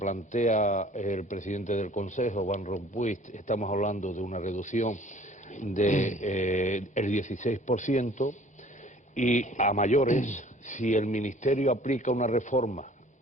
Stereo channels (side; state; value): both; normal; correlation 0.52